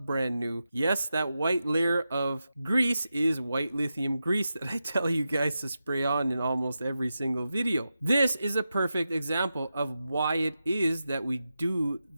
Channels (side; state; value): both; inverted; correlation -0.90